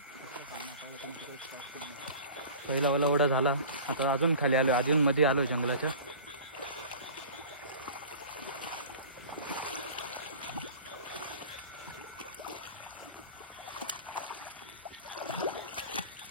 पहिला वाला ओढा झाला. आता अजून खाली आलो. अजून मध्ये आलोय जंगलाच्या.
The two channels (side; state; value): both; inverted; correlation -0.40